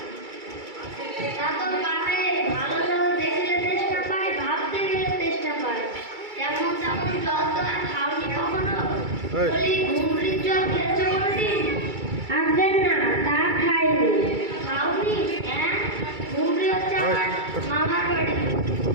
ভালো জল দেখলে চেষ্টা পায়, ভাবতে গেলে চেষ্টা পায়। যেমন তেমন জল তো আর খাওনি কখনো। বলি, ঘুমরির জল খেয়েছো কোনোদিন? আগে না, তা খাইনি। খাওনি? হ্যাঁ, ঘুমরি হচ্ছে আমার মামার বাড়ি,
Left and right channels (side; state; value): left; late; 2.3 ms